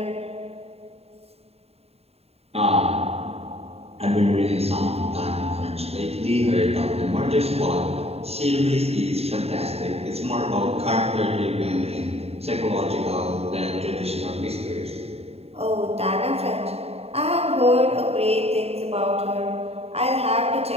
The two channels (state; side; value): late; left; 0.30 ms